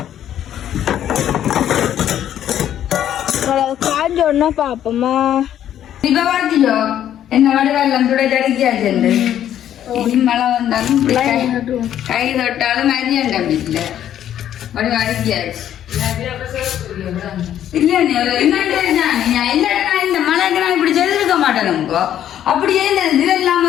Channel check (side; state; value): right; quieter; 10.8 dB